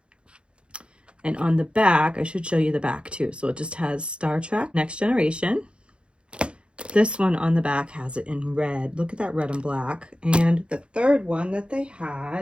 And on the back, I should show you the back too. So it just has Star Trek Next Generation. This one on the back has it in red. Look at that red and black. And the third one that they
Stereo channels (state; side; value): late; left; 0.056 ms